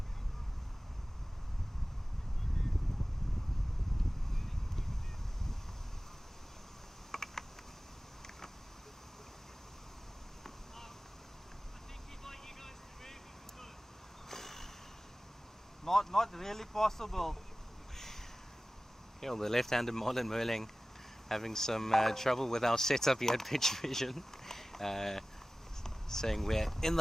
Not really possible. Yeah, well, the left-handed Marlon Muirling having some trouble with our setup here at Pitch Vision. Saying we're in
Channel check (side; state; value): both; normal; correlation 0.97